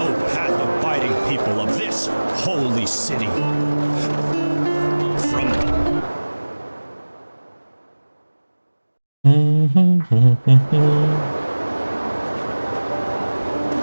path-abiding people of this holy city. From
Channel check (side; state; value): both; inverted; correlation -1.00